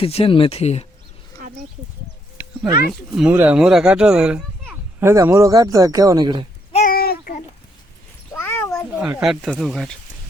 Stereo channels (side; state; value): both; normal; correlation 0.74